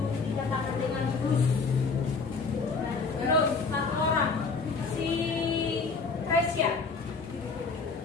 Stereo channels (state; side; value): quieter; right; 4.6 dB